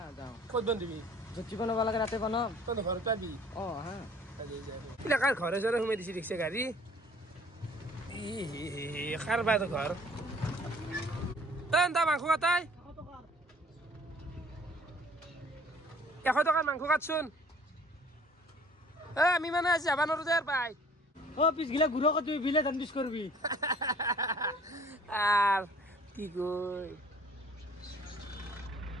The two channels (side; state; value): both; normal; correlation 0.54